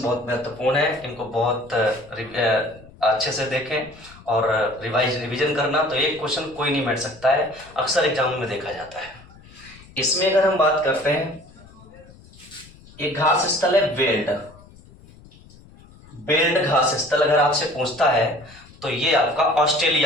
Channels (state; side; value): noise; left; rumble, 23 dB below the sound